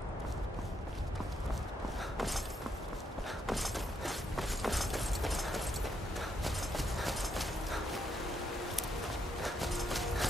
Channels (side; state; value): both; normal; correlation 0.77